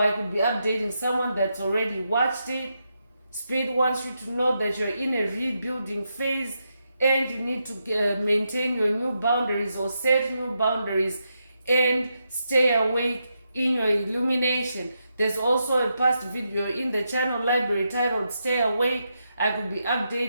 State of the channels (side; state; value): both; inverted; correlation -0.84